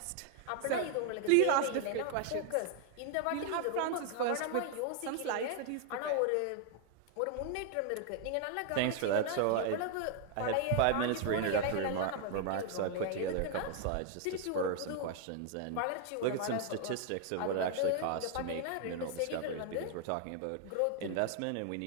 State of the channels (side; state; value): both; different; correlation 0.00